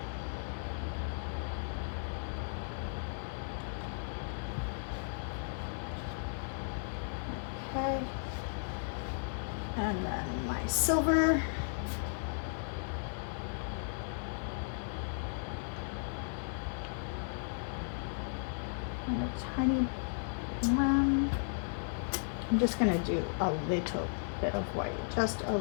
Okay. And then my silver. And a tiny, I'm just gonna do a little bit of white, just a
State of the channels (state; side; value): silent; right; digital silence